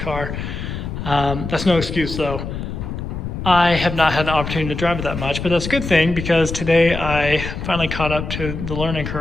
That's no excuse though. I have not had the opportunity to drive it that much, but that's a good thing because today I finally caught up to the learning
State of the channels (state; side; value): noise; left; rumble, 6 dB below the sound